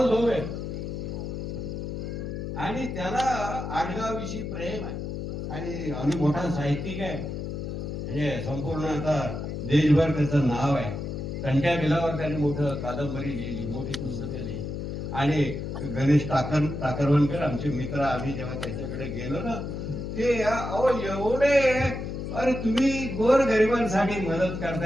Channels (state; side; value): noise; left; hum, 5 dB below the sound